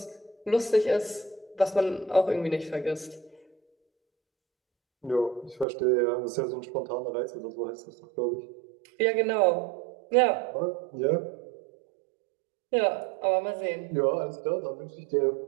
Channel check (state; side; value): drops out; left; at 5.7 s